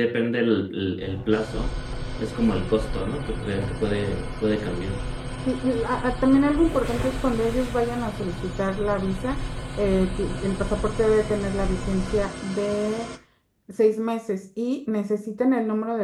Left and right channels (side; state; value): both; identical; correlation 1.00